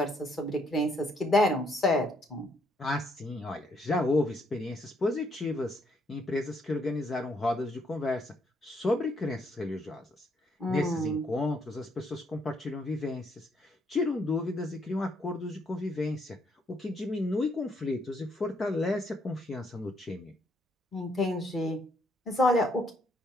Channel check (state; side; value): normal; both; correlation 0.71